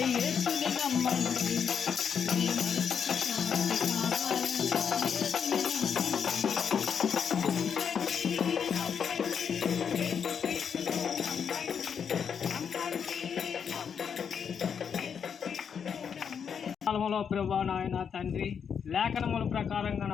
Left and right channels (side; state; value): right; quieter; 7.2 dB